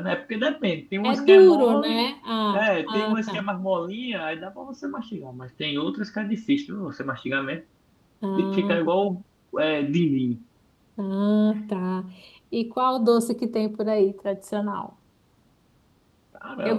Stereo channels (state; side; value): identical; both; correlation 1.00